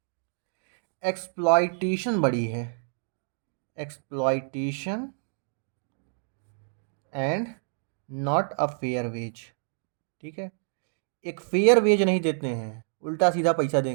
एक्सप्लॉइटेशन बड़ी है, exploitation and not a fair wage. ठीक है, एक फेयर वेज नहीं देते हैं, उल्टा सीधा पैसा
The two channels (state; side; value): silent; left; digital silence